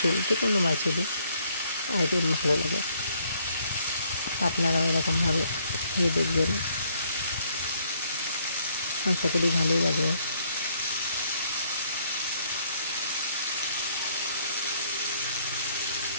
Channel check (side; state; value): both; inverted; correlation -0.67